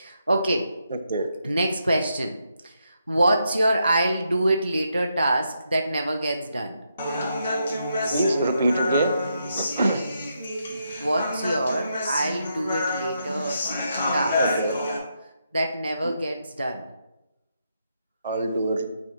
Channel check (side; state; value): both; inverted; correlation -0.81